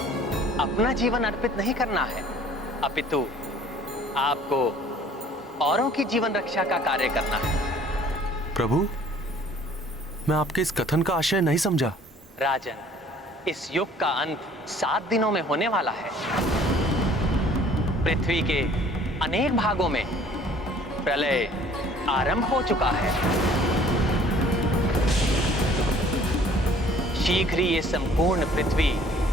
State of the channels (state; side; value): normal; both; correlation 0.54